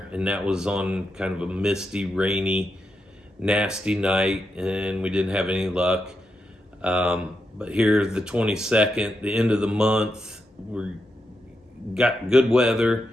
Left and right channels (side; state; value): both; normal; correlation 0.85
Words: and that was on kind of a misty, rainy, nasty night, and we didn't have any luck. But here, the 22nd, the end of the month, we got good weather,